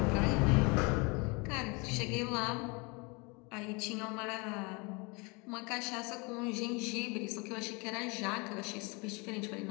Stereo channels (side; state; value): right; quieter; 29.2 dB